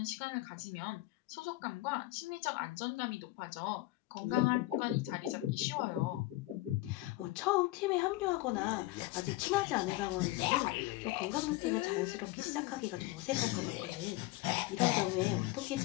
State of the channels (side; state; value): right; quieter; 19.0 dB